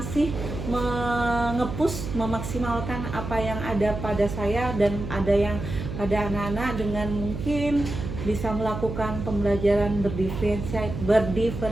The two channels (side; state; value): right; noise; hum, 6 dB below the sound